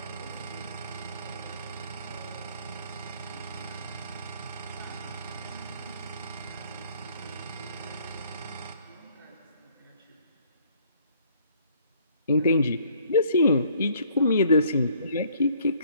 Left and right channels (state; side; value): inverted; both; correlation -0.62